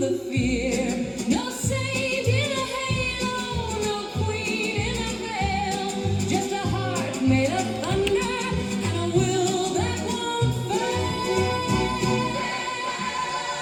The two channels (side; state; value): both; identical; correlation 1.00